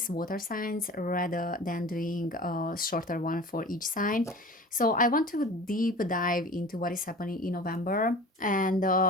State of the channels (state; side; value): normal; both; correlation 0.39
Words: water signs, rather than doing a shorter one for each sign. So, I want to deep dive into what is happening in November and